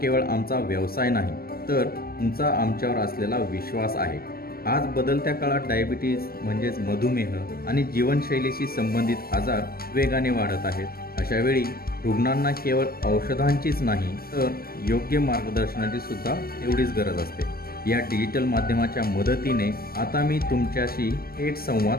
आमचा व्यवसाय नाही, तर तुमचा आमच्यावर असलेला विश्वास आहे। आज बदलत्या काळात डायबिटीज म्हणजेच मधुमेह आणि जीवनशैलीशी संबंधित आजार वेगाने वाढत आहेत। अशा वेळी रुग्णांना केवळ औषधांचीच नाही, तर योग्य मार्गदर्शनाची सुद्धा तेवढीच गरज असते। या डिजिटल माध्यमाच्या मदतीने आता मी तुमच्याशी थेट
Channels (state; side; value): late; right; 0.44 ms